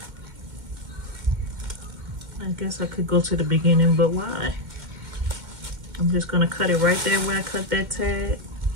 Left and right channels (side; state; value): left; late; 2.1 ms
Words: I guess I could go to the beginning, but why? I'm just going to cut it right there where I cut that tag